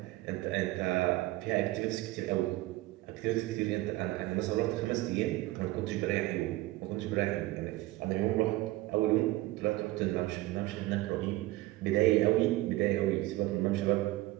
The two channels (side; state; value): left; quieter; 18.2 dB